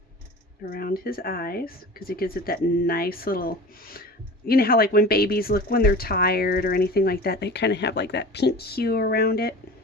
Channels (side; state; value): both; normal; correlation 0.37